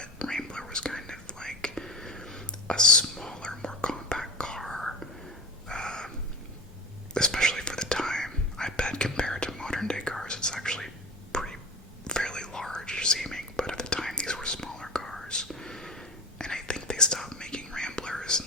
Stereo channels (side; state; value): both; normal; correlation 0.28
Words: Rambler was kind of like a smaller, more compact car, especially for the time. I bet compared to modern day cars, it's actually fairly large seeming, but at the time these were smaller cars. And I think they stopped making Ramblers